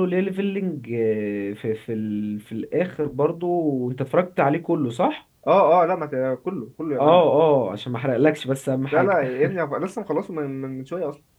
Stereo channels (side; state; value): both; identical; correlation 1.00